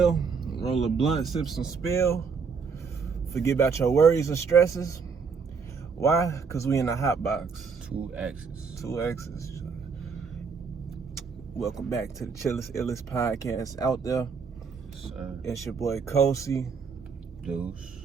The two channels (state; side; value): quieter; left; 5.5 dB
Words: roll a blunt, sip some spill, forget about your worries and stresses. Why? Because we in the hot box. 2 X's. 2 X's. Welcome back to the Chillest Illest podcast out there. Sir. It's your boy Kosi. Deuce.